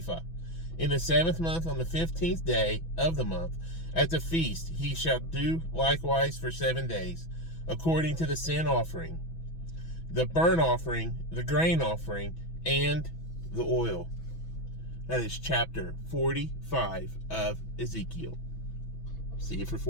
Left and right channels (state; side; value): late; right; 6.1 ms